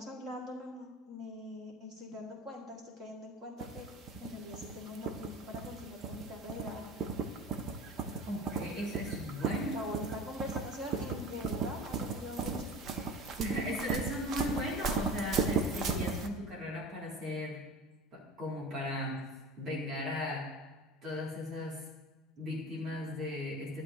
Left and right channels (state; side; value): normal; both; correlation 0.37